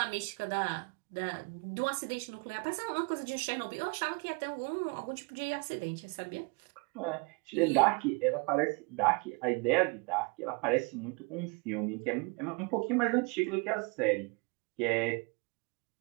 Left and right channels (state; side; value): quieter; left; 30.4 dB